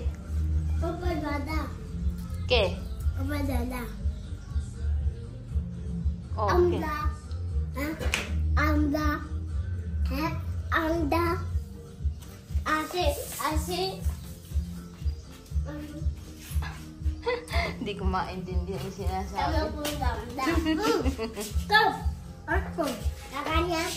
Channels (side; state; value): both; identical; correlation 1.00